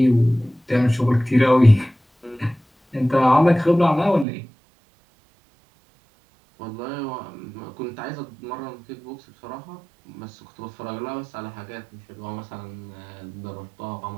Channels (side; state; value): left; drops out; at 4.2 s